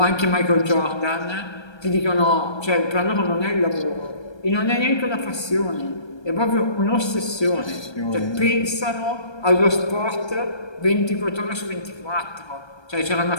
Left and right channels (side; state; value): right; late; 1.3 ms